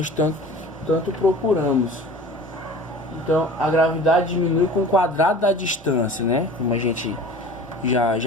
tanto procuramos. Então a gravidade diminui com o quadrado da distância, né? Como a gente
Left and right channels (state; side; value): normal; both; correlation 0.40